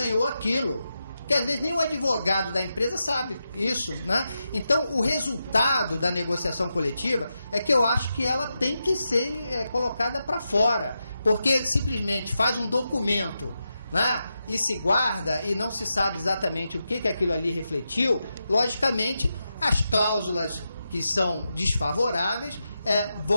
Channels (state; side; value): inverted; both; correlation -0.88